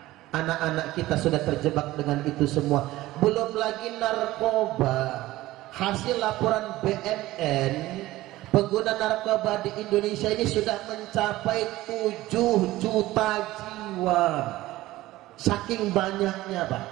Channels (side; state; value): left; quieter; 17.0 dB